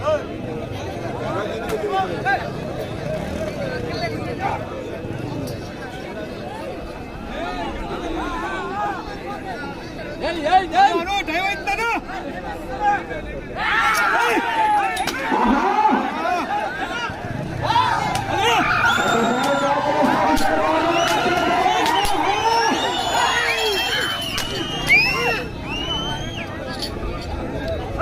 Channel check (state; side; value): identical; both; correlation 1.00